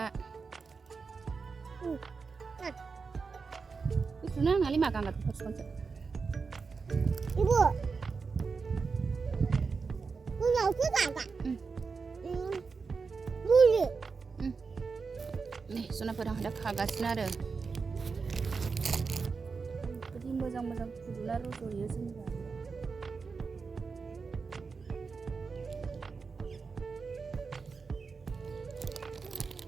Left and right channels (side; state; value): left; quieter; 4.9 dB